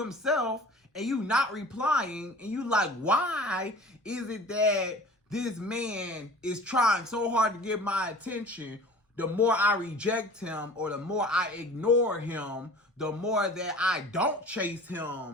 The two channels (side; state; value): both; normal; correlation 0.43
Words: and you not replying, and you like, why is it that this man is trying so hard to get my attention? The more I reject him or the more I ignore him, the more that I don't chase